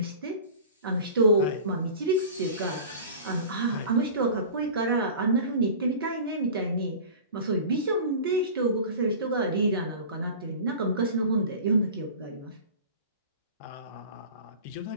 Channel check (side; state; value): both; inverted; correlation -0.38